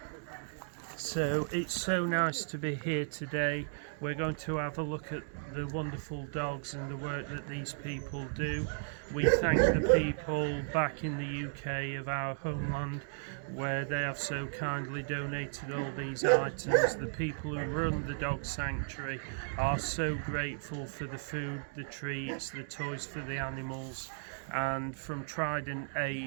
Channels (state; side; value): silent; left; digital silence